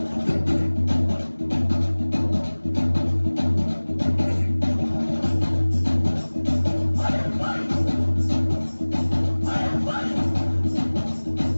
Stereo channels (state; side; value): inverted; both; correlation -1.00